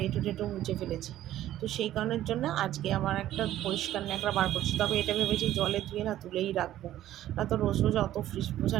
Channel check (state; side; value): quieter; left; 13.2 dB